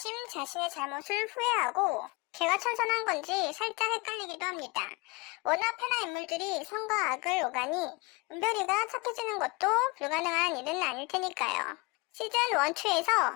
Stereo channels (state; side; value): quieter; right; 26.8 dB